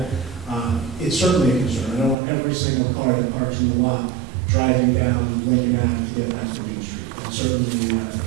It's certainly a concern. I don't want every single car that parks in the lot driving down Lincoln Avenue to get back to Main Street. It's certainly a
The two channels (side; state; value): left; drops out; at 2.1 s